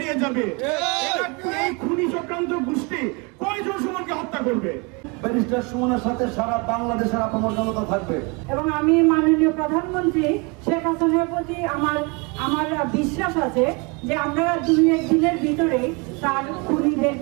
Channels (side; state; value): left; quieter; 30.1 dB